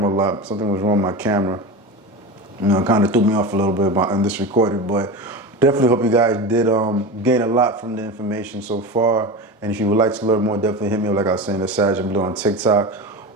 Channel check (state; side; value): normal; both; correlation 0.26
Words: a lot. Something was wrong with my camera. You know, it kind of threw me off a little bit in this recording, but definitely hope you guys did gain a lot from the information so far. And if you would like to learn more, definitely hit me up, like I was saying, at SagInBlue on TikTok